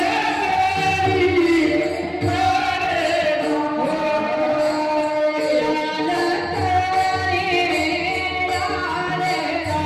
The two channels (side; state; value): both; identical; correlation 1.00